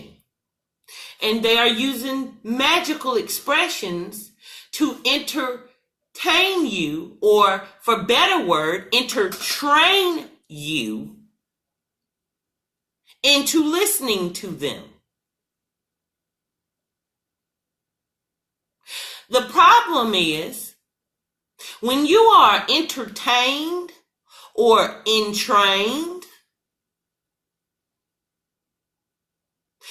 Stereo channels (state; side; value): identical; both; correlation 1.00